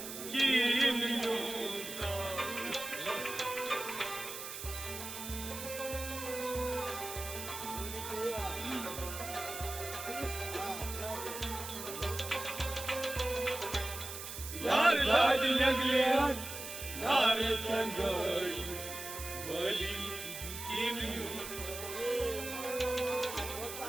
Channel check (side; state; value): right; noise; hiss, 8 dB below the sound